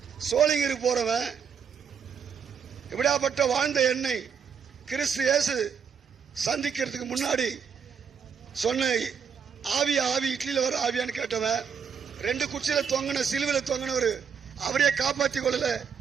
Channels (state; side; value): quieter; left; 6.9 dB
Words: சோழிங்கருக்கு போறவன், இப்படியாப்பட்ட வாழ்ந்த என்னை கிறிஸ்து இயேசு சந்திக்கிறதுக்கு முன்னாடி சொன்ன ஆவி இட்லியில வர ஆவியான்னு கேட்டவன், 2 குச்சியில தொங்கின சிலுவில தொங்கினவர் அவரையே காப்பாற்றி கொள்ளல,